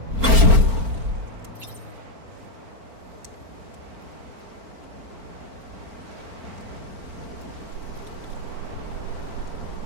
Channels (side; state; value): left; late; 4.4 ms